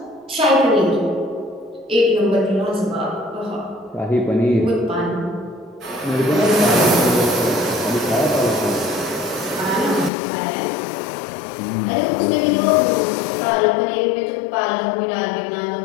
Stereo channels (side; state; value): right; drops out; at 10.1 s